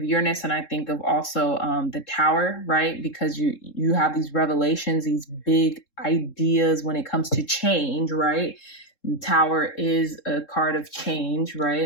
Uranus and I think of also the Tower, right? Because you have these revelations, these big ideas when it comes to change, right? The Tower is a card of change,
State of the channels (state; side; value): late; right; 3.7 ms